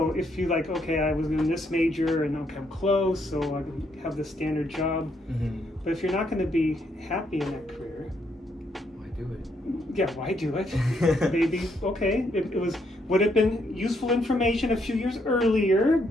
if you like, okay, I was in this major and okay, I'm close, so I have the standard job. Mm-hmm. But if you're not going to be happy in that career, Why do it? yeah, why do it? Maybe, okay, would have been useful information a few years earlier,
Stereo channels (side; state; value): both; normal; correlation 0.74